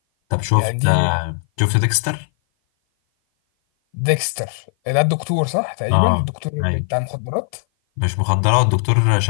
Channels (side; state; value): right; silent; 57 dB below the other